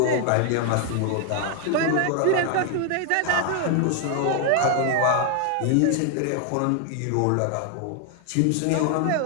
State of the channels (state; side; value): different; both; correlation 0.00